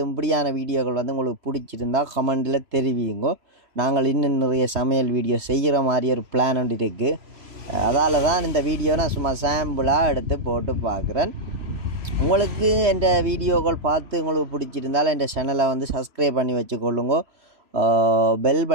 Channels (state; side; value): late; left; 3.0 ms